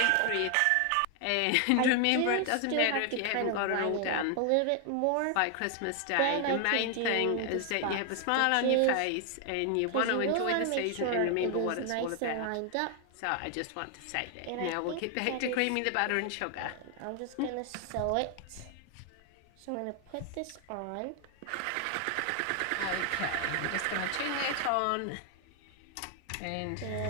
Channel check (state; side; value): different; both; correlation 0.00